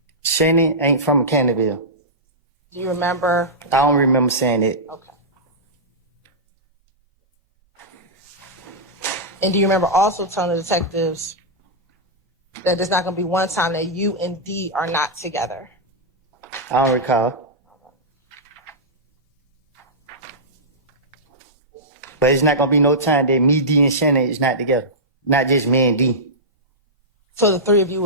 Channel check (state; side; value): normal; both; correlation -0.12